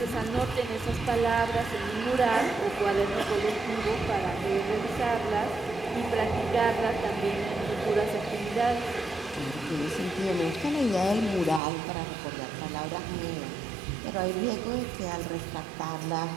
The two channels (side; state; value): left; drops out; at 11.6 s